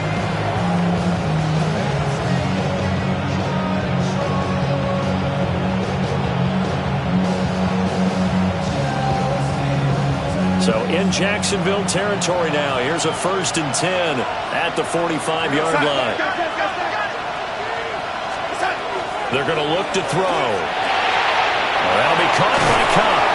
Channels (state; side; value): identical; both; correlation 1.00